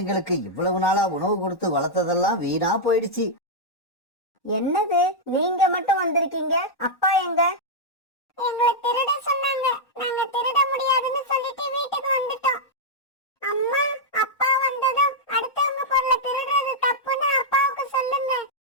இவ்வளவு நாளா உணவு கொடுத்து வளர்த்ததெல்லாம் வீணா போயிடுச்சு. என்னது, நீங்க மட்டும் வந்திருக்கீங்க? அப்பா எங்க? எங்களை திருட சொன்னாங்க, நாங்க திருட முடியாதுன்னு சொல்லிட்டு வீட்டுக்கு வந்துட்டோம். அம்மா, அப்பா வந்ததும் அடுத்தவங்க பொருளை திருடுறது தப்புன்னு அப்பாவுக்கு சொல்லுங்க.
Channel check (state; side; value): late; right; 1.1 ms